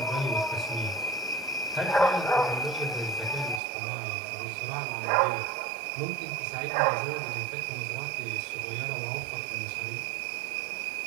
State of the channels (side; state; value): left; drops out; at 3.6 s